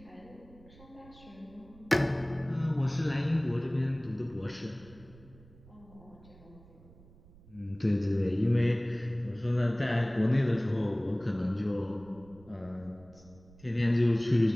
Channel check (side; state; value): right; noise; rumble, 23 dB below the sound